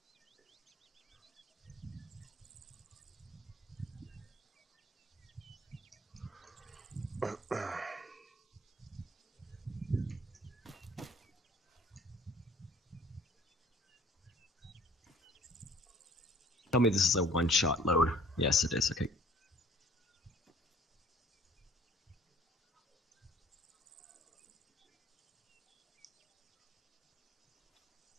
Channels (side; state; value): both; normal; correlation 0.54